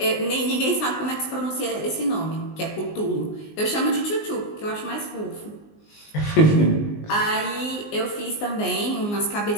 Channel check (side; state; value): right; late; 19 ms